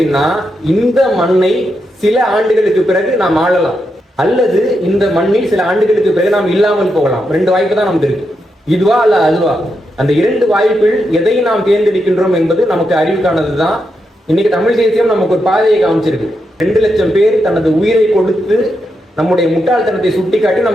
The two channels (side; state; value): both; normal; correlation 0.84